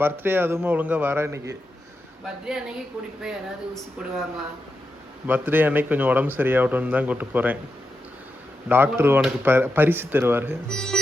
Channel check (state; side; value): normal; both; correlation 0.88